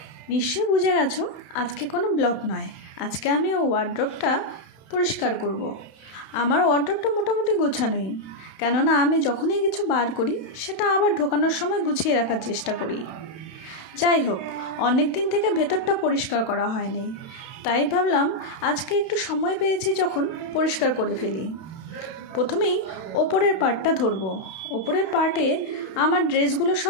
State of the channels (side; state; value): right; late; 32 ms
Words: নিশ্চয়ই বুঝে গেছো আজকে কোনো ব্লগ নয়। আজকে আমি ওয়ার্ড্রপটা পরিষ্কার করব। আমার ওয়ার্ড্রপটা মোটামুটি গোছানোই, কেননা আমি যখনই কিছু বার করি সেটা আবার ঢোকানোর সময় গুছিয়ে রাখার চেষ্টা করি। যাই হোক, অনেক দিন থেকে ভেতরটা পরিষ্কার করা হয়নি, তাই ভাবলাম আজকে একটু সময় পেয়েছি যখন পরিষ্কার করে ফেলি। প্রথমেই ওপরের পার্টটা ধরবো। ওপরের পার্টে আমার ড্রেসগুলো